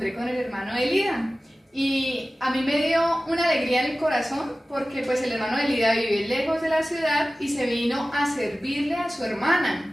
con el hermano de Lida. Y a mí me dio una alegría en el corazón porque pues el hermano de Lida vive lejos de la ciudad y se vino a servirle a su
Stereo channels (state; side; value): normal; both; correlation 0.96